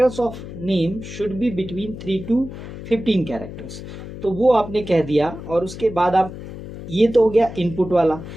of name should be between 3 to 15 characters, तो वो आपने कह दिया। और उसके बाद आप, ये तो हो गया इनपुट वाला।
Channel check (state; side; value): noise; left; hum, 11 dB below the sound